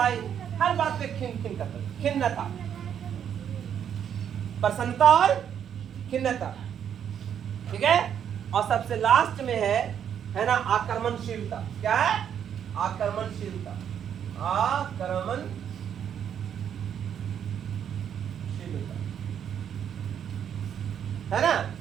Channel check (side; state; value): left; quieter; 8.8 dB